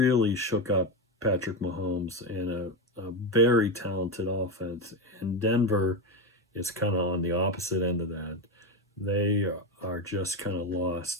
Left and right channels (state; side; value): normal; both; correlation 0.13